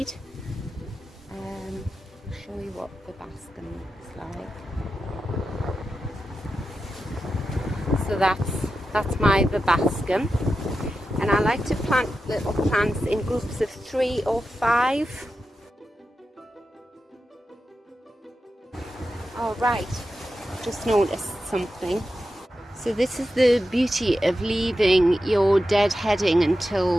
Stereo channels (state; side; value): normal; both; correlation 0.91